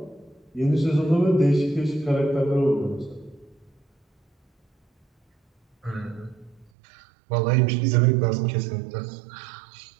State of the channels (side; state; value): left; drops out; at 6.7 s